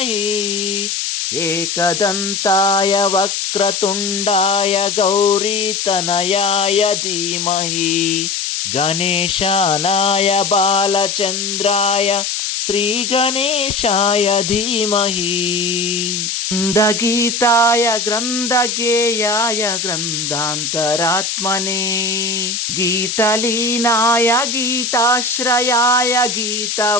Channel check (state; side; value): noise; left; hiss, 2 dB below the sound